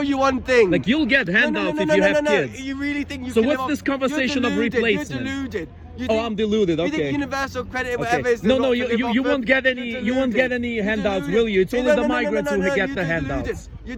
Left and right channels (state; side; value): identical; both; correlation 1.00